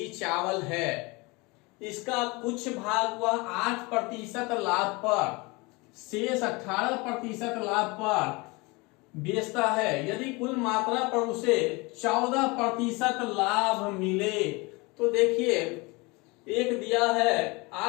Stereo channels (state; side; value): quieter; right; 25.8 dB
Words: चावल है, इसका कुछ भाग वह 8% लाभ पर, शेष 18% लाभ पर बेचता है। यदि कुल मात्रा पर उसे 14% लाभ मिले, तो देखिए एक दिया है